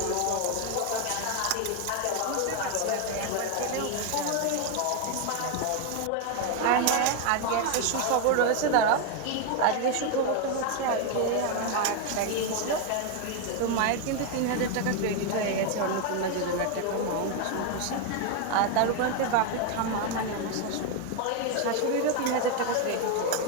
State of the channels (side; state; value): both; different; correlation 0.01